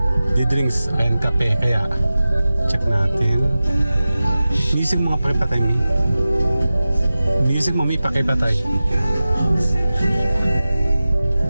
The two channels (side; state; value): both; inverted; correlation -0.95